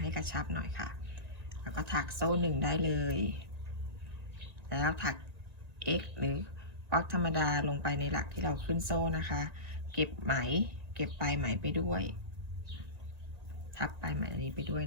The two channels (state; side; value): late; left; 1.9 ms